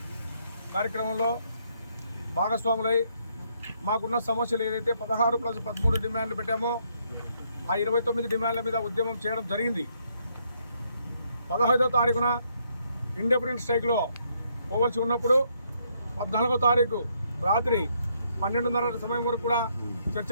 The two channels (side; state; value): both; inverted; correlation -0.73